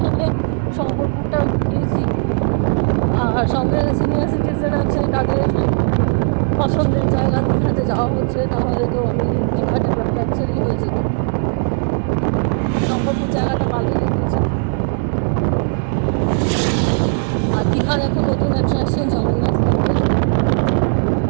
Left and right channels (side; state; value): left; silent; 56 dB below the other